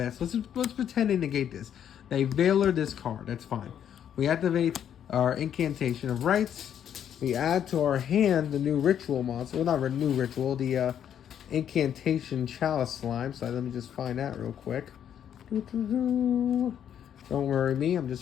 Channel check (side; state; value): right; quieter; 9.4 dB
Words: So let's pretend they negate this. They veiler this card, that's fine. We activate our Incantation of Rights. We add to our hand the new ritual monster. Well, not a new ritual, the Incantation Chalice Slime. So let me just find that real quick. Don't worry me, I'm